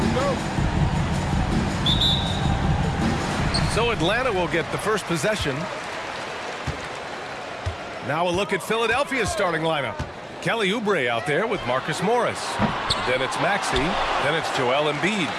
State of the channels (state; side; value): identical; both; correlation 1.00